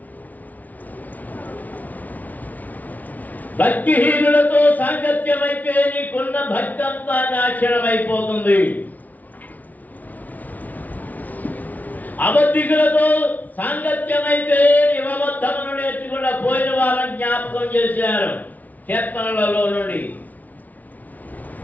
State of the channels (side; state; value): right; late; 0.077 ms